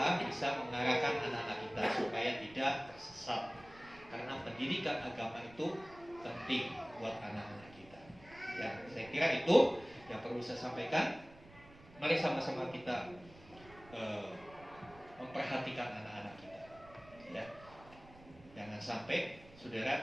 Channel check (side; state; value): right; noise; rumble, 22 dB below the sound